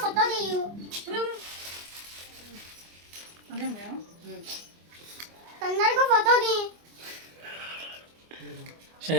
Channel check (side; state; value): left; late; 24 ms